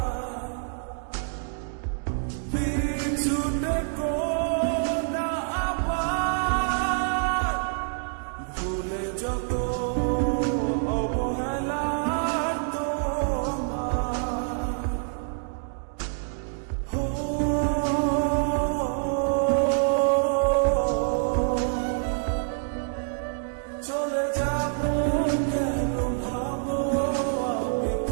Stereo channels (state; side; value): silent; left; digital silence